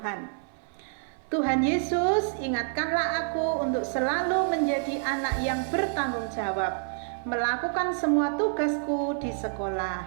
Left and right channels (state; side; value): silent; left; 58 dB below the other